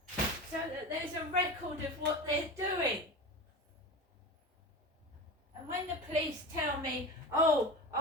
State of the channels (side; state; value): both; normal; correlation 0.29